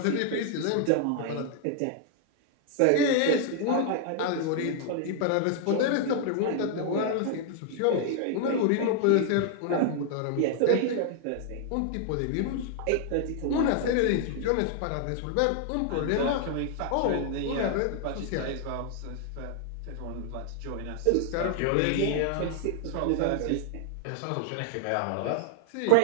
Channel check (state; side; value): different; both; correlation 0.00